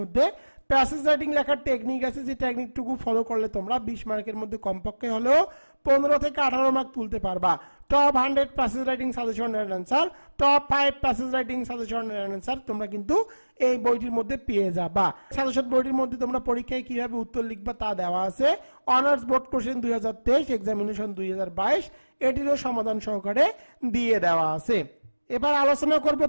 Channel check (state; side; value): inverted; both; correlation -1.00